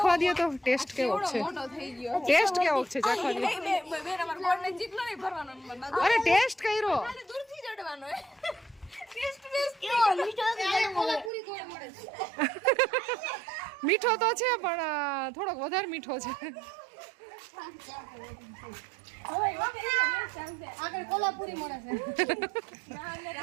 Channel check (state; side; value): drops out; left; at 11.3 s